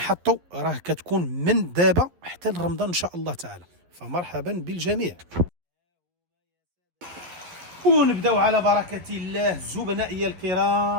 راه كتكون من دابا حتى لرمضان ان شاء الله تعالى، فمرحبا بالجميع. ونبداو على بركة الله زبنائي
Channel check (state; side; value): late; left; 11 ms